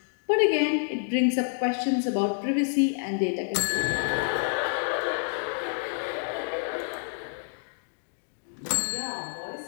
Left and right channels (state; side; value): silent; right; 59 dB below the other